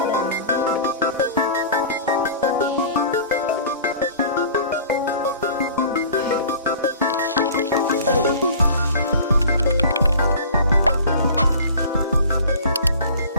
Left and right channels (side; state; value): both; inverted; correlation -0.43